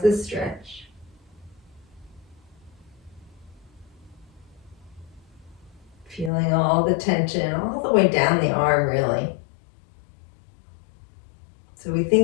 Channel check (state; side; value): drops out; right; at 6.3 s